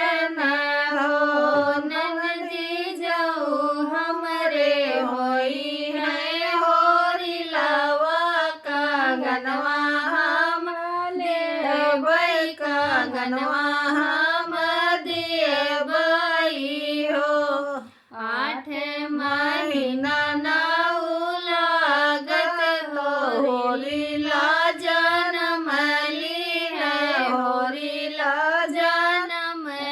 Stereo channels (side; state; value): both; identical; correlation 1.00